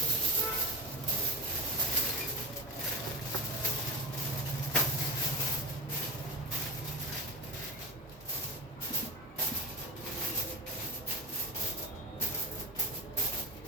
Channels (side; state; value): both; normal; correlation 0.19